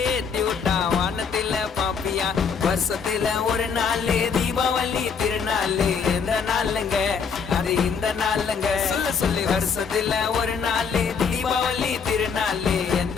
ஏத்தி விட்டா வானத்தில பாப்பியா. வருஷத்துல ஒரு நாள் தீபாவளி திருநாள். எந்த நாளுங்க அது இந்த நாளுங்க. சொல்லி வருஷத்துல ஒரு நாள் தீபாவளி திருநாள்.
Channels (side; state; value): right; quieter; 6.1 dB